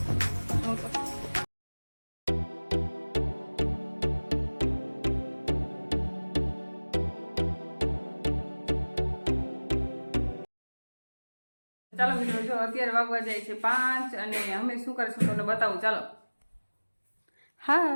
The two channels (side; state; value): both; inverted; correlation -1.00